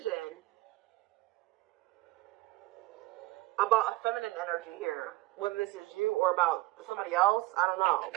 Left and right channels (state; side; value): quieter; left; 19.1 dB